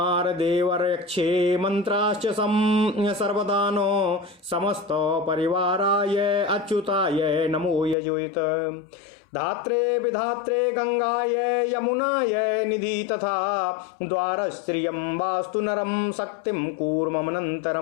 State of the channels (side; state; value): right; drops out; at 8.0 s